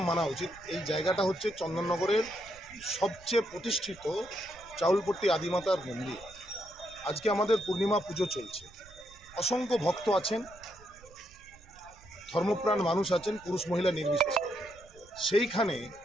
মানা উচিত, এই জায়গাটা হচ্ছে চন্দননগরের সবচেয়ে প্রতিষ্ঠিত চাউলপট্টি আদিমাতার মন্দির। আজকে আমাদের পূর্ণিমা পুজো চলছে, অসংখ্য ভক্ত আছেন, ধর্মপ্রাণ মানুষ আছেন, পুরুষ মহিলা নির্বিশেষে। সেইখানে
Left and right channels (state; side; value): noise; right; rumble, 23 dB below the sound